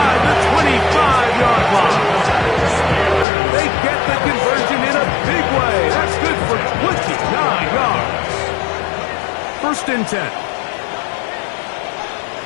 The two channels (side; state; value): right; drops out; at 3.2 s